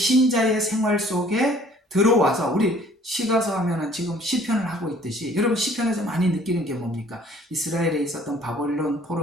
생활 속에 들어와서, 우리 시가서 하면은 지금 시편을 하고 있듯이, 여러분 시편에서 많이 느끼는 게 뭡니까? 이스라엘에 있었던 바벨론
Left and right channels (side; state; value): both; normal; correlation 0.56